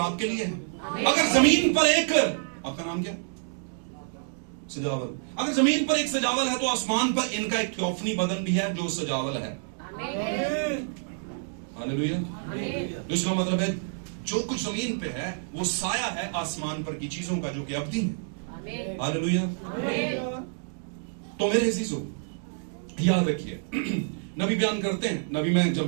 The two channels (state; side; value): silent; left; digital silence